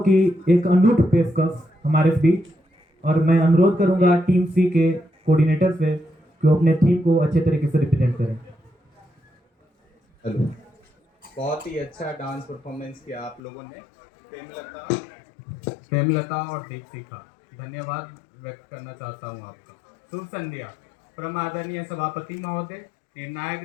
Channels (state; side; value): drops out; right; at 13.4 s